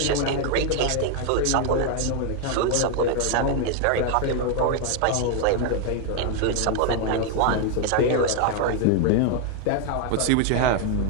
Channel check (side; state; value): both; different; correlation 0.00